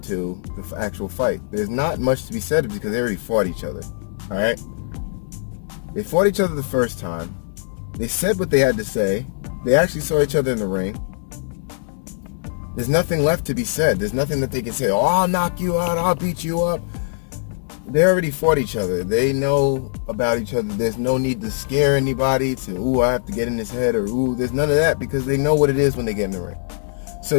to the actual fight. There's not much to be said because they already fought each other. All right, they fought each other the first time. They said what they had to say. They actually saw each other in the ring. There's nothing left to be said. There's nothing that they can say, oh, I'll knock you out, I'll beat you up. They already fought each other. They know about each other. There's no need to scare anybody to, ooh, I have to get in his head, or ooh, there's none of that, because they know what it is when they get in the ring.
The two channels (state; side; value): silent; right; 65 dB below the other